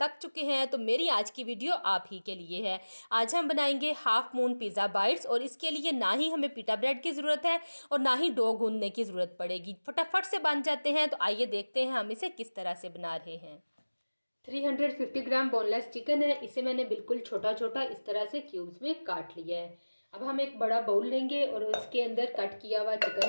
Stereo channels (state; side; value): inverted; both; correlation -1.00